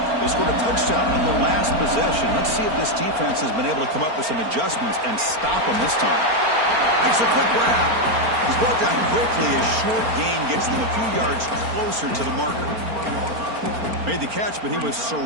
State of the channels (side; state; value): left; late; 4.4 ms